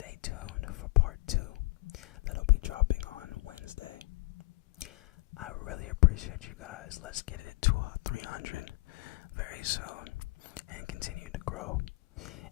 tuned for part 2. That'll be dropping on Wednesday. appreciate you guys. Let's get it to 300 very soon and continue to grow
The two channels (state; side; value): quieter; right; 24.3 dB